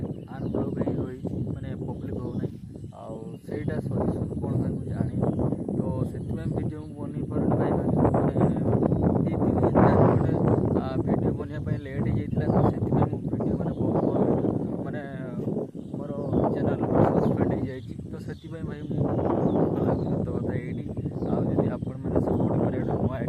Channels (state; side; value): identical; both; correlation 1.00